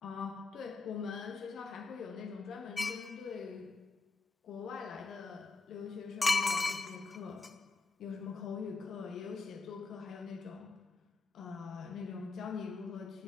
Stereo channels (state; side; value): quieter; right; 4.0 dB